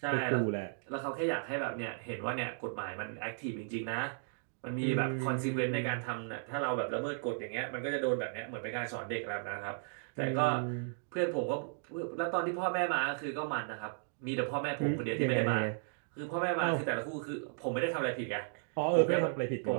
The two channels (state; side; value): silent; left; digital silence